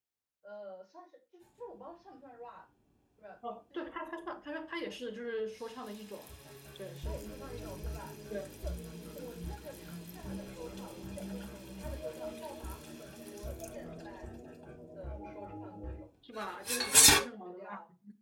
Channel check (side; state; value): both; identical; correlation 1.00